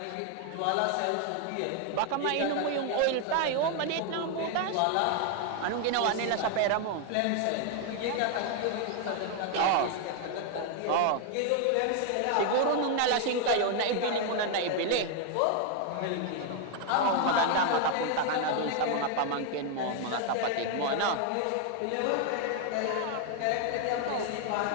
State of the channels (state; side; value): different; both; correlation 0.00